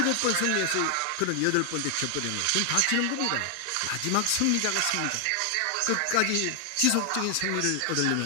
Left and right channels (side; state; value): both; different; correlation 0.00